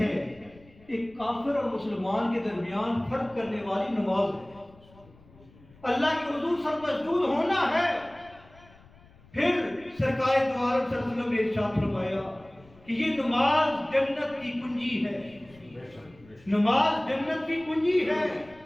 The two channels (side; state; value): left; noise; rumble, 26 dB below the sound